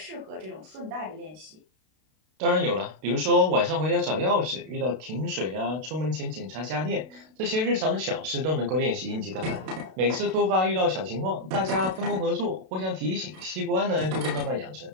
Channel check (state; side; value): late; left; 32 ms